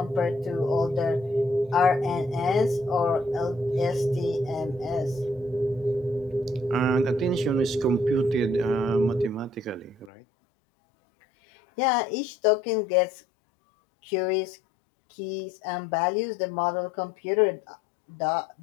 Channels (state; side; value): drops out; right; at 10.1 s